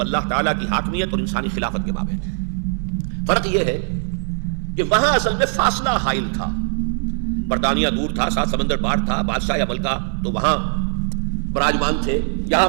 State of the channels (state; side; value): silent; left; digital silence